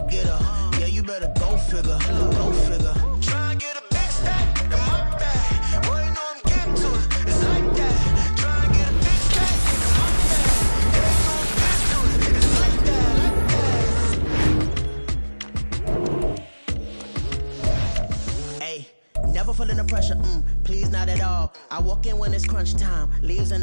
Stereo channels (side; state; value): both; inverted; correlation -1.00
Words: Yeah, you better go figure, go figure. Try and get a big stack in my bag. Boy, you know I'm getting to it. It's like that. Try and get a big stack in my bag. Yeah, you know I'm getting to it. It's like that, like that. Hey, never feeling the pressure, please not at all. I walk in when it's crunch time, leaves in